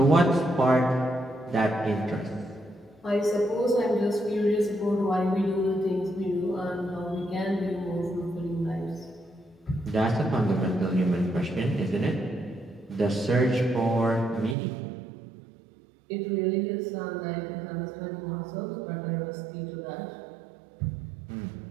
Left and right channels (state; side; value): drops out; left; at 14.6 s